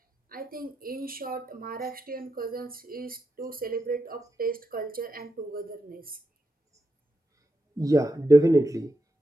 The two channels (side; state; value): both; normal; correlation 0.86